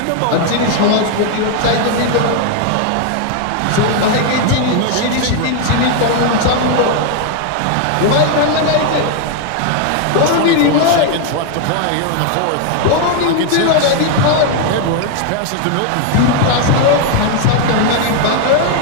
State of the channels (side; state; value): both; different; correlation 0.00